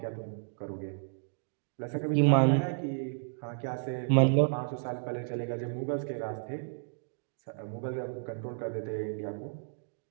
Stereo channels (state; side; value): silent; left; digital silence